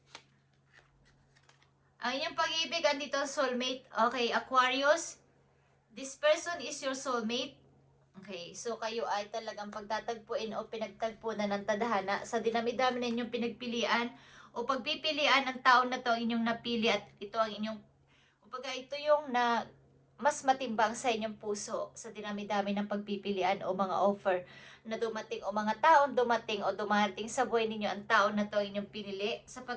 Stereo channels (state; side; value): identical; both; correlation 1.00